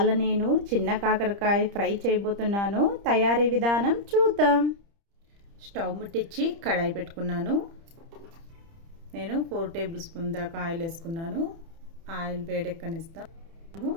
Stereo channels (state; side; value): late; left; 30 ms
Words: నేను చిన్న కాకరకాయ ఫ్రై చేయబోతున్నాను. తయారీ విధానం చూద్దాం. స్టవ్ ముట్టించి కడాయి పెట్టుకున్నాను. నేను 4 టేబుల్ స్పూన్ దాకా ఆయిల్ వేసుకున్నాను. ఆయిల్ వేడెక్కనిస్తాను.